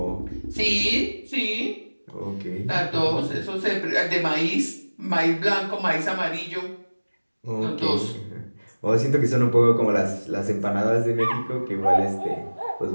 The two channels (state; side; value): inverted; both; correlation -1.00